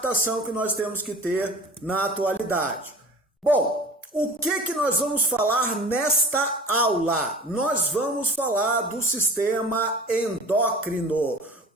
que nós temos que ter na atualidade. Bom, o que nós vamos falar nesta aula? Nós vamos falar do sistema endócrino,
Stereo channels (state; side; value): normal; both; correlation 0.40